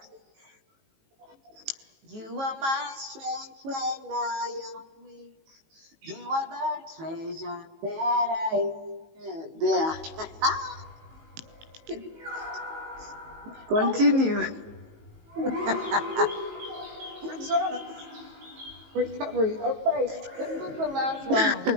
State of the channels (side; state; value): left; late; 18 ms